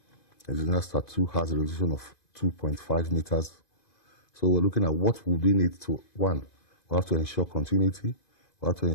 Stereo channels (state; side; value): late; right; 2.5 ms